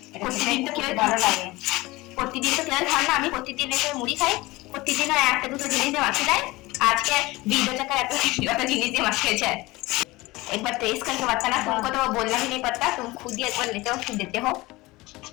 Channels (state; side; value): quieter; right; 20.8 dB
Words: এটা প্রতিদিন তো খেতে কেউ ভালো খায়। লাগে। প্রতিদিন তো কেউ খান না, আমি প্রতিদিন এসে মুড়ি খাই, প্রতিদিনও একটা দুটো জিনিস দিয়ে মাখিয়ে দেয়। আজকে 20 টাকা এত জিনিস দিয়ে माखिए है। एक बार टेस्ट करके बताना, तुमको तो वो बोलना भी नहीं पड़ता, तुम खुद ही एक बार लेते हो फिर देते हो।